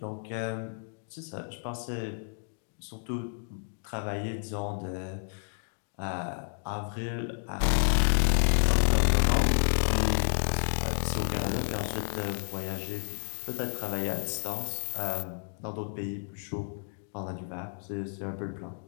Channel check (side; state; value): right; silent; digital silence